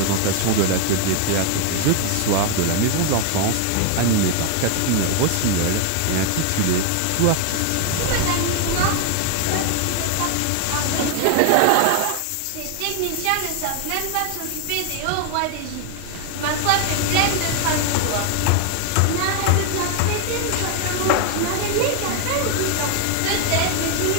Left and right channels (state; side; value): different; both; correlation 0.00